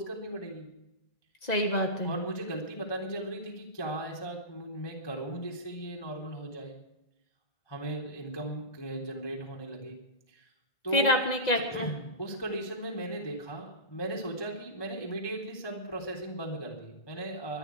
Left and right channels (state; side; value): late; right; 1.9 ms